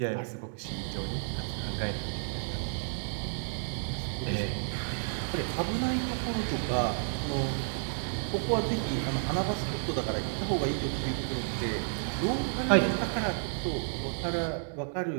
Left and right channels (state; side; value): silent; left; digital silence